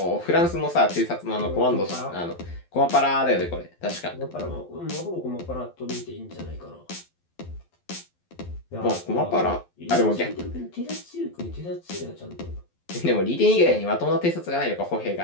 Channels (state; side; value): late; right; 12 ms